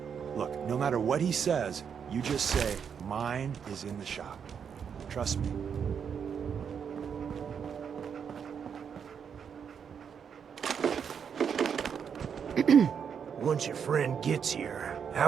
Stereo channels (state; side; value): quieter; left; 7.2 dB